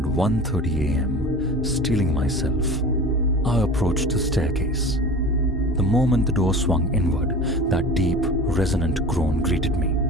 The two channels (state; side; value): normal; both; correlation 0.36